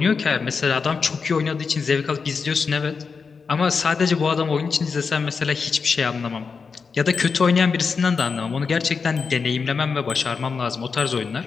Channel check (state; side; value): quieter; right; 5.2 dB